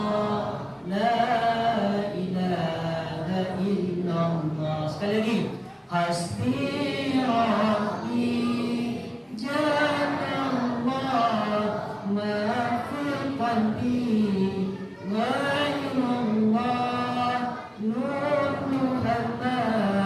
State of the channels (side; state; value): both; identical; correlation 1.00